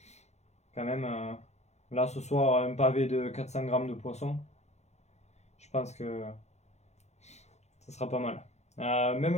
Quand même, là ce soir, un pavé de 400 grammes de poisson. Je pense que ça sera pas mal. Même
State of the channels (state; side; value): late; right; 0.32 ms